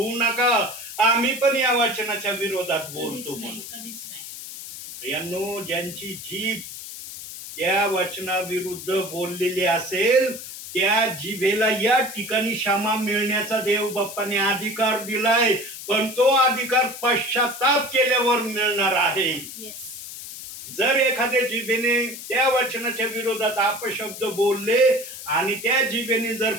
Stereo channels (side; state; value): left; noise; hiss, 11 dB below the sound